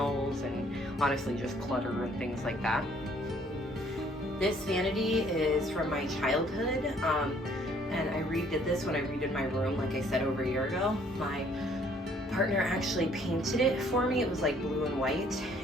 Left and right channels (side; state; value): both; normal; correlation 0.62